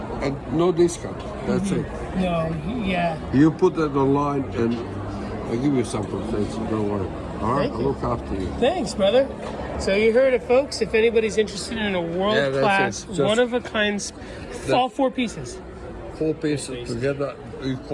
and no discount. That's it. No, yeah. You put that online, and I'll give you some protection. Don't worry. All right, I'll look after you. Thanks, brother. So you heard it, folks. If anybody's interested in a world-class, one-of-a-kind, all 4 pieces. 4 pieces together, you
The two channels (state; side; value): identical; both; correlation 1.00